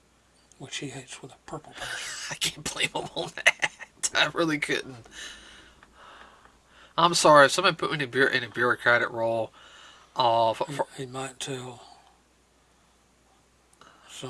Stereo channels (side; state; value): both; identical; correlation 1.00